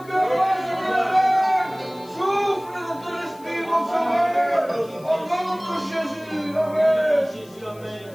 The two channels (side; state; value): left; noise; hiss, 25 dB below the sound